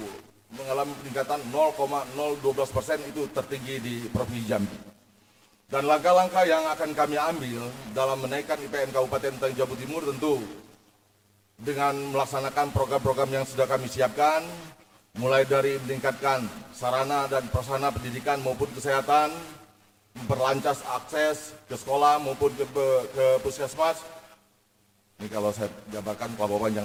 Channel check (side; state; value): both; identical; correlation 1.00